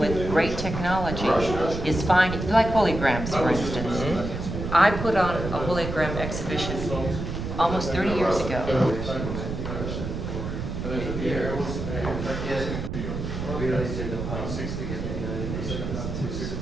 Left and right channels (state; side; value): noise; right; rumble, 5 dB below the sound